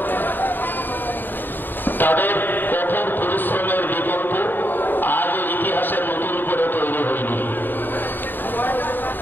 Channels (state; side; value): late; right; 0.092 ms